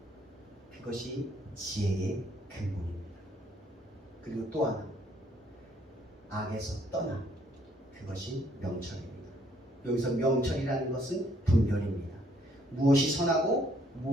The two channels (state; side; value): normal; both; correlation 0.67